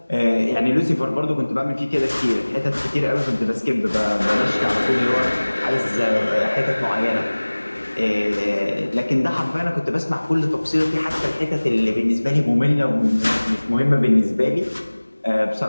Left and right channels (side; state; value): both; inverted; correlation -1.00